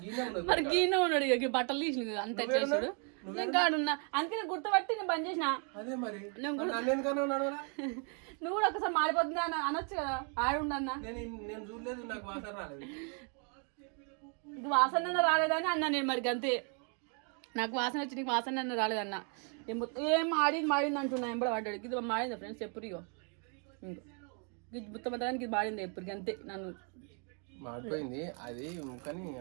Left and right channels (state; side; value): quieter; left; 39.6 dB